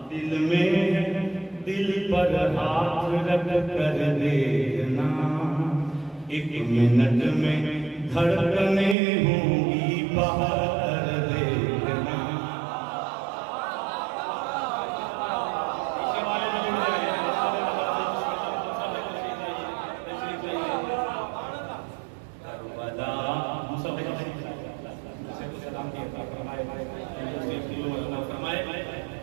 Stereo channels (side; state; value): left; drops out; at 9.0 s